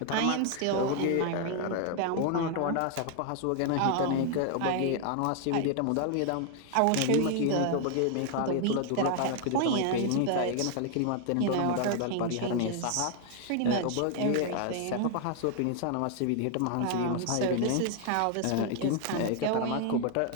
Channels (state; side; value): different; both; correlation 0.00